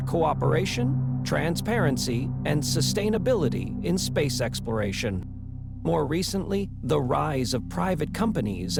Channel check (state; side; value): identical; both; correlation 1.00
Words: cooperation, transparency, and sustainability in space exploration. More recently, the rise of private companies